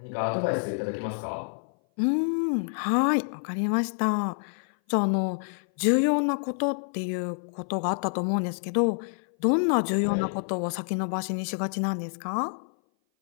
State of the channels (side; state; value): right; silent; 57 dB below the other